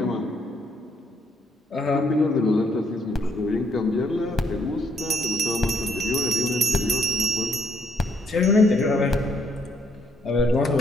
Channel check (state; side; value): normal; both; correlation 0.70